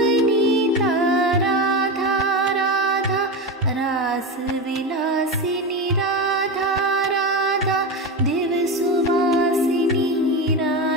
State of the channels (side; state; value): both; normal; correlation 0.18